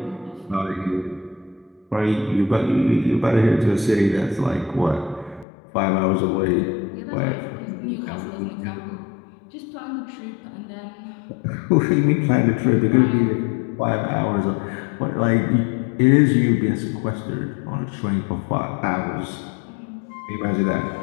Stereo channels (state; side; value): drops out; right; at 5.5 s